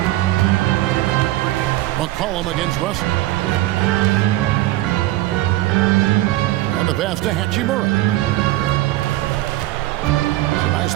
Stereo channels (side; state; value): left; quieter; 16.6 dB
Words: McCollum against Russell. And the pass to Hachimura.